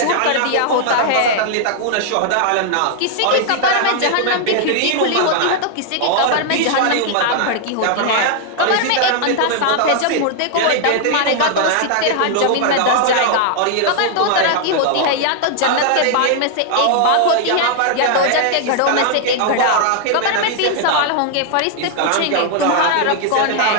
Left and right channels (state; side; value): different; both; correlation 0.00